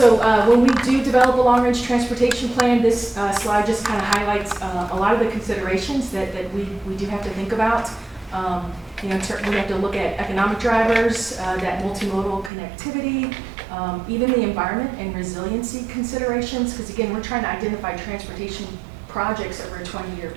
when we do develop a long-range transportation plan, this slide just kind of highlights a lot of the considerations that we do have to think about. We have to look at economic drivers, that multimodal connectivity, even the environment and resiliency considerations, because again, we're trying to identify transportation projects over a 20-year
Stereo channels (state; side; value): drops out; left; at 12.5 s